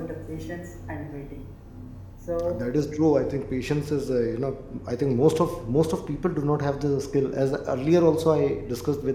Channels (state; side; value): identical; both; correlation 1.00